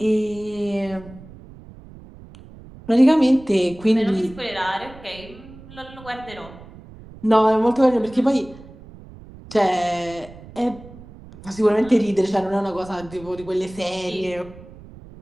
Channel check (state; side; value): noise; right; rumble, 19 dB below the sound